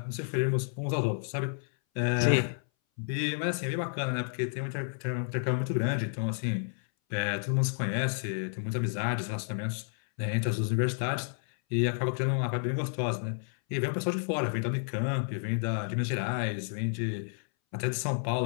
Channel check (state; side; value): silent; right; 57 dB below the other